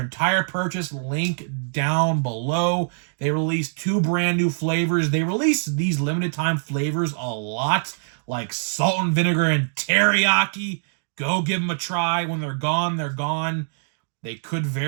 purchase. Link down below. They released 2 brand new flavors. They release these limited time flavors a lot, like salt and vinegar and teriyaki. Go give them a try. When they're gone, they're gone. They could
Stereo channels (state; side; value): silent; left; digital silence